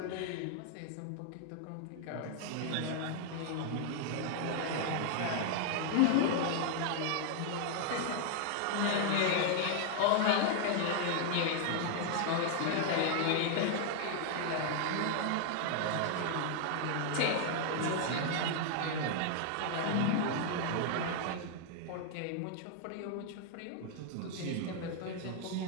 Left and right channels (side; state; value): both; different; correlation 0.00